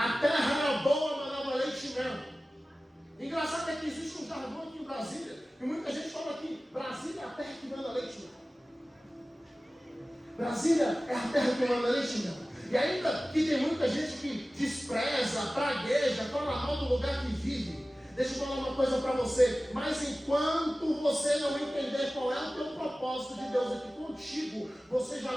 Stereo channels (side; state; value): both; normal; correlation 0.96